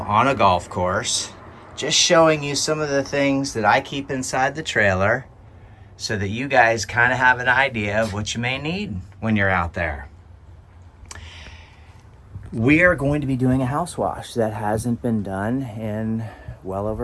a golf course, just showing you some of the things that I keep inside the trailer so that you guys kind of have an idea of what you may need when you're out there. We are going to be doing a house wash that hasn't been done in well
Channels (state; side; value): identical; both; correlation 1.00